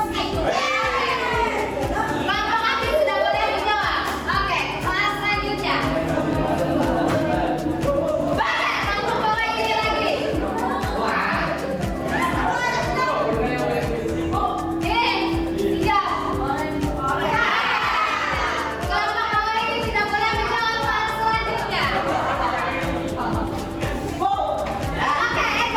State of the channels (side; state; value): both; identical; correlation 1.00